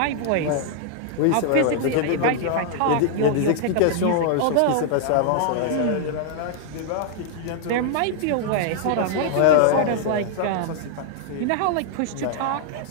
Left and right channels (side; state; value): both; different; correlation -0.01